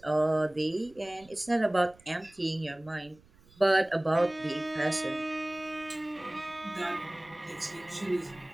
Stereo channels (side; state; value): right; noise; rumble, 27 dB below the sound